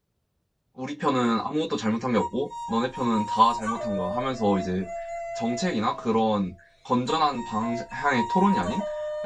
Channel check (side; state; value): both; identical; correlation 1.00